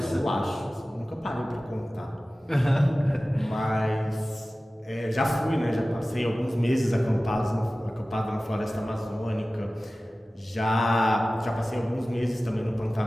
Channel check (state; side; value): normal; both; correlation 0.96